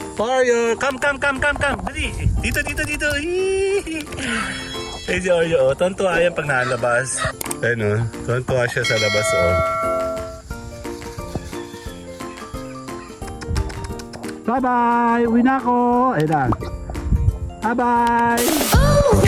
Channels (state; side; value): identical; both; correlation 1.00